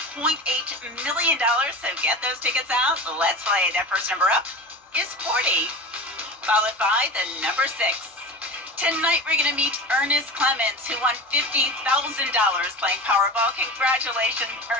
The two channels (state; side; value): normal; both; correlation 0.31